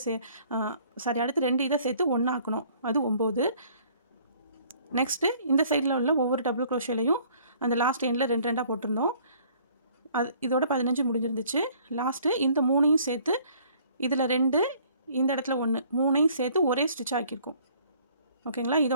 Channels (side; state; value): both; inverted; correlation -0.57